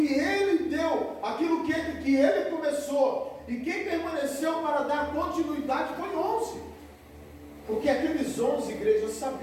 Ele deu, aquilo que Ele começou, e quem permaneceu para dar continuidade foi 11. Porque aqueles 11, igreja,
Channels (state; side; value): identical; both; correlation 1.00